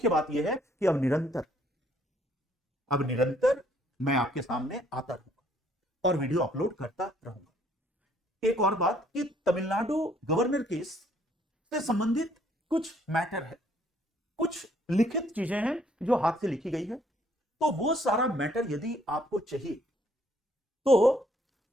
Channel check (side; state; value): both; normal; correlation 0.65